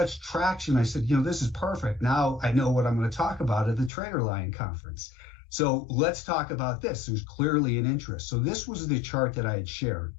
traction. I said, this is perfect. Now I know what I'm going to talk about at the TraderLion Conference. So let's talk about this. There's clearly an interest. So this was the chart that I had shared.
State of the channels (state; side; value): drops out; right; at 3.9 s